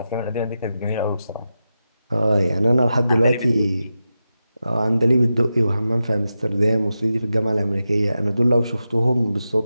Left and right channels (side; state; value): both; inverted; correlation -0.90